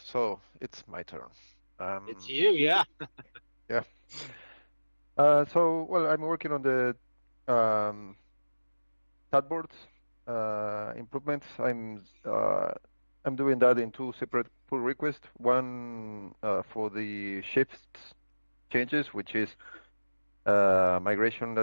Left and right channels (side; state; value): both; inverted; correlation -1.00